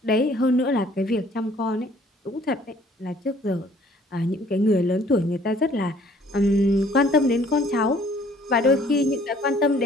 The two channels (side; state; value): both; normal; correlation 0.58